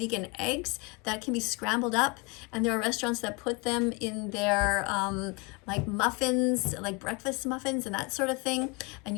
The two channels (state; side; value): quieter; right; 29.0 dB